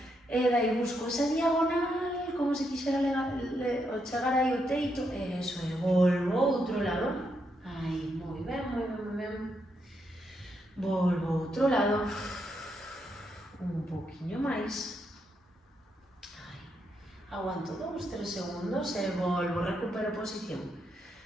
E dai busco esa diagonal, como se quixera chegar aí ao teito, e eso é, volvo outro lado, aí, moi ben, moi ben, moi ben. Volvo outro lado, un poquinho máis. Aguanto 2-3 segundos e volvo, recupero posición.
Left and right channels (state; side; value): normal; both; correlation 0.80